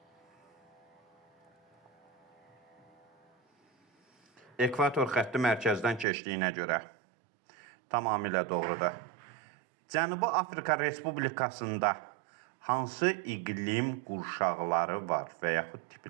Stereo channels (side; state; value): left; drops out; at 6.1 s